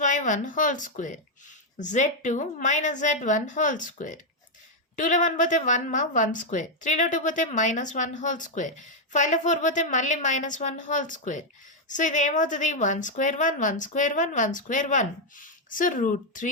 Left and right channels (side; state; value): both; normal; correlation 0.00